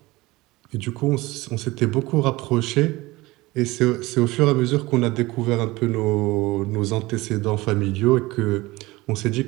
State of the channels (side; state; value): left; quieter; 20.5 dB